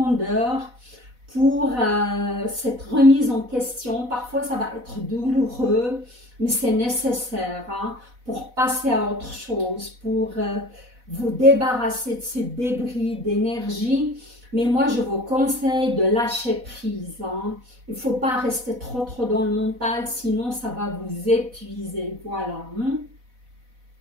pour cette remise en question. Parfois, ça va être douloureux, mais c'est nécessaire hein, pour passer à autre chose, pour vous débarrasser de ces débris d'énergie. Mais moi, je vous conseille de lâcher prise. Hein. Il ne faut pas rester trop dans le mental, sinon ça va vous épuiser. Voilà. Hein.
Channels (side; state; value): left; late; 4.1 ms